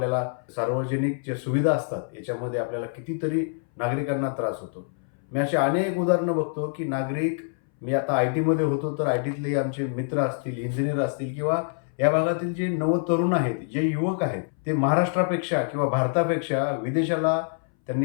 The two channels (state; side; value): silent; right; 60 dB below the other